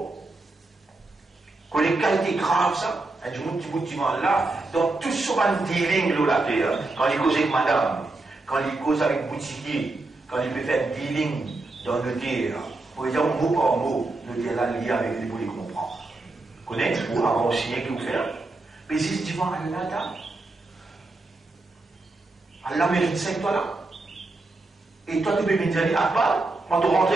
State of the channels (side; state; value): left; quieter; 3.1 dB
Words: Quand les qualités graves, ça, un petit bout de là, dans tout ce dealing là, la terre, quand il cause avec madame, quand il cause avec boutiquier, quand il peut faire dealing dans le terre, pour dire mot par mot, le terre là lié avec lui pour les comprendre. Vous connaissez, ou avant signer qui vous fait, mais c'est devant Allah, Allah mérite 5 toi là. Et toi, tu peux me dire, Akbar, quand tu rentres,